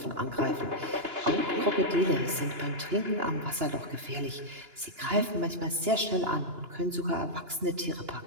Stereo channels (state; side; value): late; left; 2.9 ms